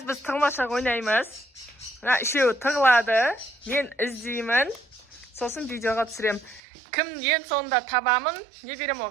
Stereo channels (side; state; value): left; drops out; at 6.6 s